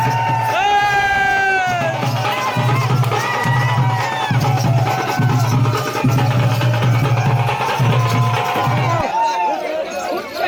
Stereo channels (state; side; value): identical; both; correlation 1.00